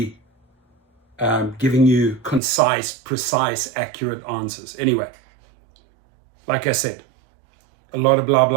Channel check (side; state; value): left; drops out; at 2.4 s